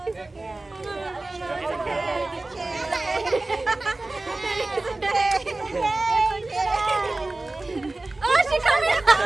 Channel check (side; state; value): left; quieter; 3.0 dB